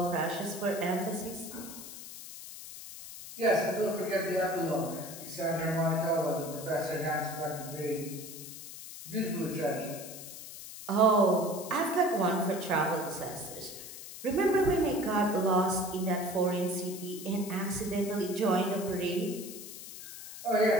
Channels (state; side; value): noise; left; hiss, 12 dB below the sound